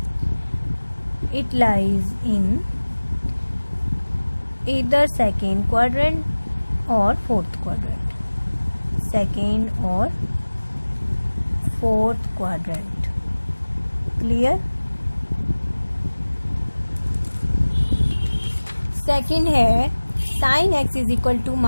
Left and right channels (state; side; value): inverted; both; correlation -1.00